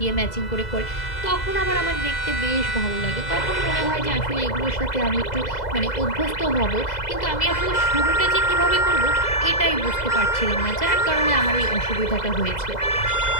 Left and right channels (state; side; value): late; right; 2.0 ms